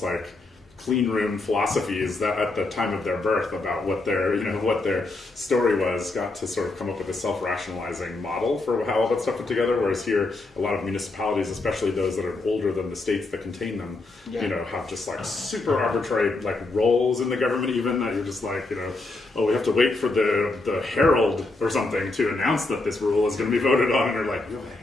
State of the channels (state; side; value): quieter; right; 3.1 dB